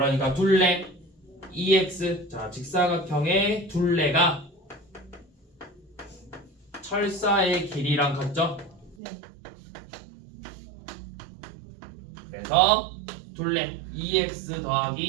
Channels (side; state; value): left; drops out; at 9.0 s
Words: 둘레 EX. 자, 직사각형의 둘레가 철사의 길이랑 같죠? 네. 그래서 둘레 EX